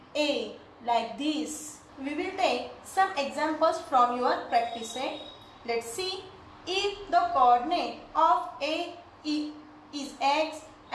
A, like this. We will take some examples from your practice set. Let's see. If the coordinate of A is X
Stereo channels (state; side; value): identical; both; correlation 1.00